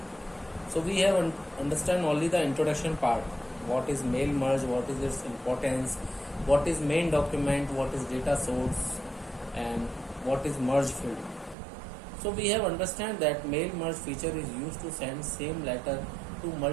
So we have understand only the introduction part. What is mail merge? What is its importance? What is main document? What is data source? And what is merge field? So we have understand that mail merge feature is used to send same letter to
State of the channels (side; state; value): left; drops out; at 11.6 s